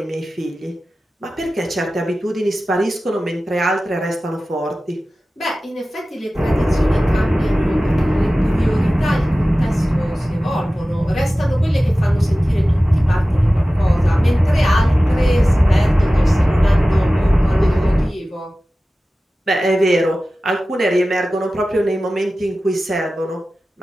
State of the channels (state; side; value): normal; both; correlation 0.96